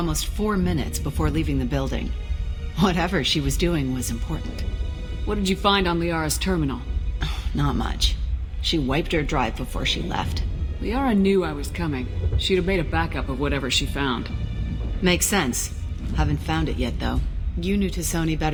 4 minutes before leaving the building. Whatever she was doing was important. What did you find on Liara's terminal? Not much. She wiped her drive before she left. Liara knew I was coming. She'd have made a backup of whatever she found. Makes sense. Haven't found it yet, though. You knew Tisoni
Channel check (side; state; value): both; identical; correlation 1.00